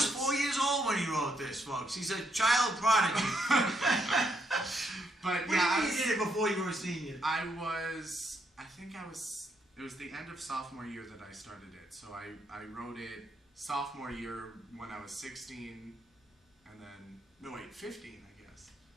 notes- 4 years old when he wrote this, folks. He's a child prodigy. But What yeah, do you mean you did it before you were a senior? it was the end of sophomore year that I started it. So I wrote it sophomore year when I was 16, and then, 15, I guess.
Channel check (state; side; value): normal; both; correlation 0.77